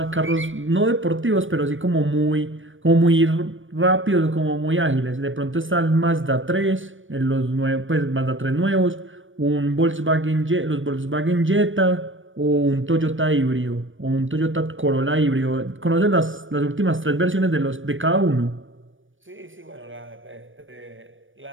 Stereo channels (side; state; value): left; late; 0.57 ms